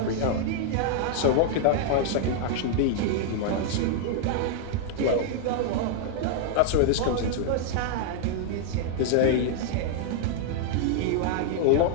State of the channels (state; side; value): different; both; correlation -0.01